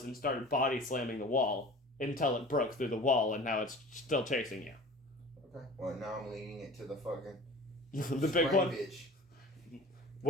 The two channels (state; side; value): normal; both; correlation 0.42